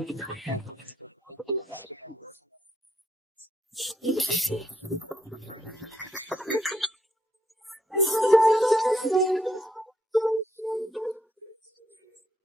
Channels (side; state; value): both; normal; correlation 0.75